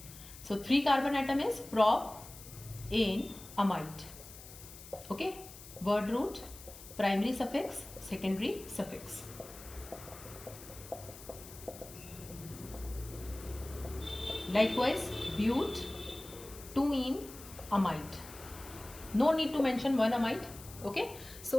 So 3 carbon atom is prop-ane amide. Okay, word root, primary suffix, secondary suffix. Likewise, but 2-ene amide. No need to mention one amide. Okay,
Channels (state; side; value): noise; left; hiss, 16 dB below the sound